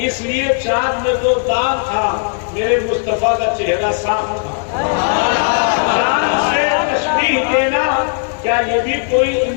اس لیے چاند میں تو داغ تھا, میرے مصطفیٰ کا چہرہ صاف تھا. چاند سے تشبیہ دینا کیا یہ بھی کوئی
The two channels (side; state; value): right; silent; digital silence